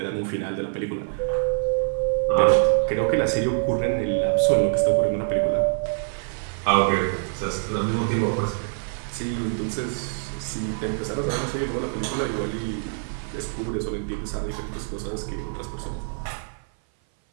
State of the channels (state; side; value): silent; left; 57 dB below the other